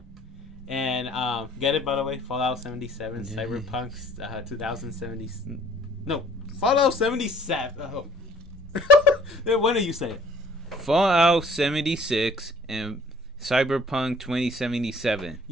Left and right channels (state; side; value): normal; both; correlation 0.55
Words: And get it, by the way, Fallout 77, Cyberpunk 2070. No, Fallout 77. Oh. When do you say it? Fallout 76 and Cyberpunk 2077.